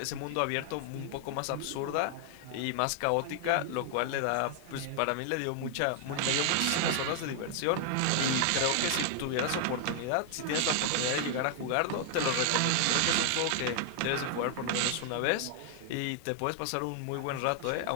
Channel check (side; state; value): both; different; correlation 0.00